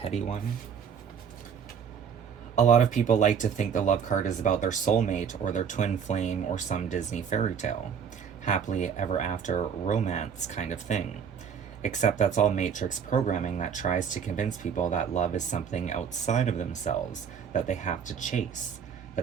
one. A lot of people like to think the love card is about their soulmate or their twin flame or some Disney fairy tale. Happily ever after romance kind of thing. Except that's all matrix programming that tries to convince people that love is something outside of themselves, that they have to chase,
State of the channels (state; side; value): quieter; left; 7.3 dB